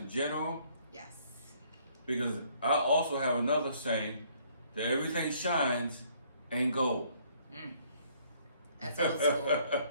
general, Yes. because I also have another saying that everything shines ain't gold. That's old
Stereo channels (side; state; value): both; inverted; correlation -0.63